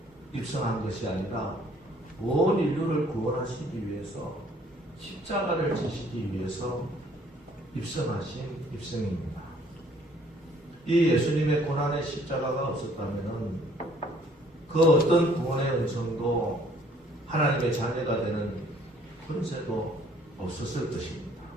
입성한 것이 아니라 온 인류를 구원하시기 위해서 십자가를 지시기 위해서 입성하신 입성입니다. 이 예수님의 고난의 십자가가 없었다면 그 어떤 구원의 음성도 하나님의 자녀가 되는 권세도 없었을 것입니다.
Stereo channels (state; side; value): normal; both; correlation 0.60